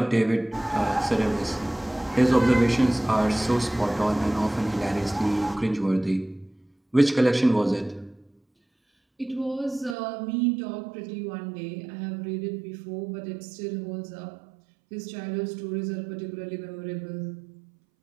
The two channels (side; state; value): left; drops out; at 10.0 s